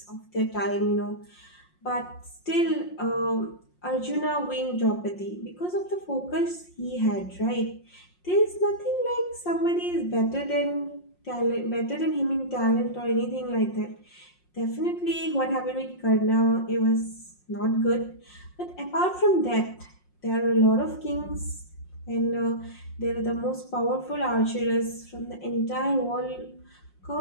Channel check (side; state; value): right; late; 5.6 ms